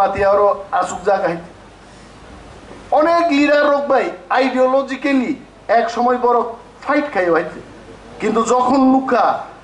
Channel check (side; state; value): both; identical; correlation 1.00